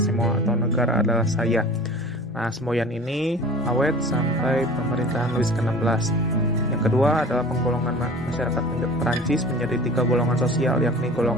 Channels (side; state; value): both; normal; correlation 0.42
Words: semua atau negara adalah saya. Nah, semboyan ini awet sampai pemerintahan Louis ke-16. Yang kedua adalah penggolongan masyarakat Perancis menjadi 3 golongan sosial, yakni